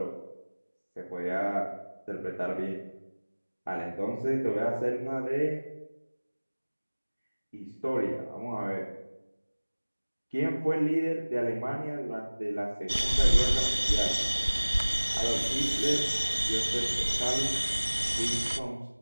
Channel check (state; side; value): inverted; both; correlation -1.00